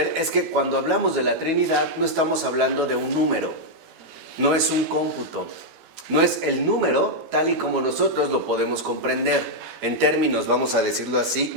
es que cuando hablamos de la Trinidad no estamos hablando de un número, no es un cómputo, no es el número tal y como nosotros lo podemos comprender en términos, vamos a decirlo así,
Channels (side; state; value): left; late; 17 ms